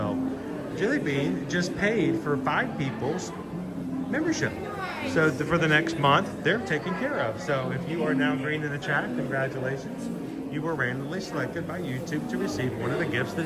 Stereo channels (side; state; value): both; identical; correlation 1.00